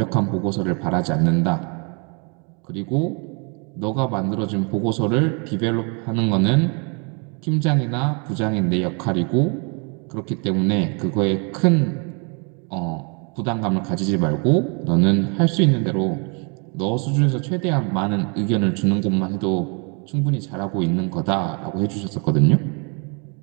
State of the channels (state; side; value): quieter; left; 34.9 dB